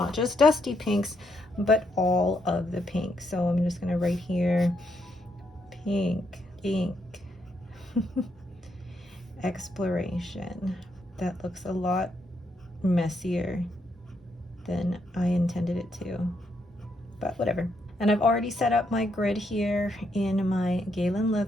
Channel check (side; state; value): both; normal; correlation 0.77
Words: just dusty pinks, but all of the pinks. So I'm just gonna write here, pink ink exploration. That looks a lot messier than I intended it to, but whatever. And I've already set up my grid here in my Galen